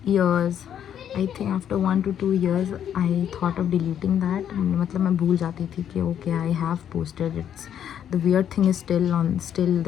years, I think after 1 to 2 years, I thought of deleting that. मतलब मैं भूल जाती थी कि okay, I have posted. It's the weird thing is still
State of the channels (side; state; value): right; quieter; 9.5 dB